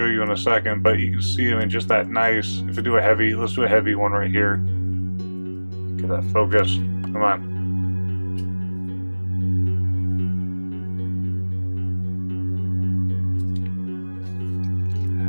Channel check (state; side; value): inverted; both; correlation -1.00